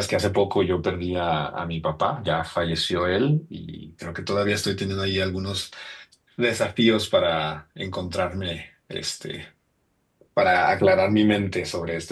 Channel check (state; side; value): identical; both; correlation 1.00